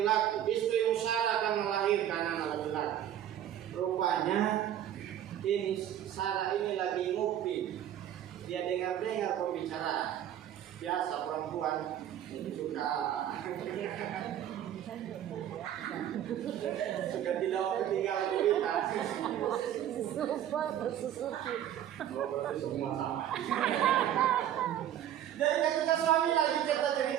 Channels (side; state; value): left; quieter; 11.0 dB